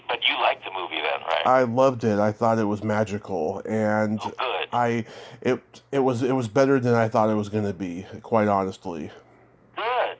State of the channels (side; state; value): both; identical; correlation 1.00